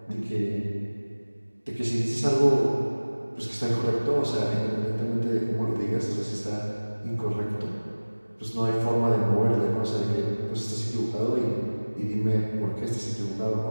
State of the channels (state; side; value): inverted; both; correlation -1.00